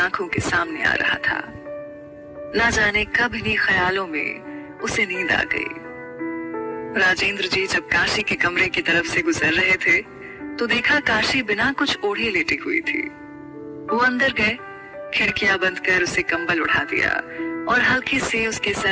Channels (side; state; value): both; identical; correlation 1.00